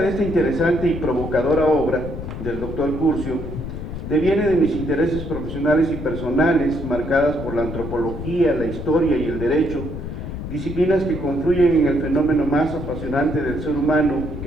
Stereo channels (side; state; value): left; noise; rumble, 7 dB below the sound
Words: de esta interesante y provocadora obra del doctor Curcio deviene de mis intereses profesionales y personales marcadas por la antropología, la historia y el derecho, disciplinas que confluyen en el fenómeno más apasionante del ser humano,